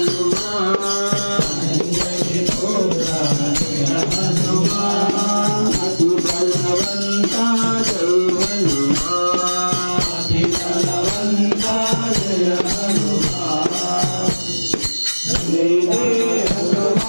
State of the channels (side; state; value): both; inverted; correlation -1.00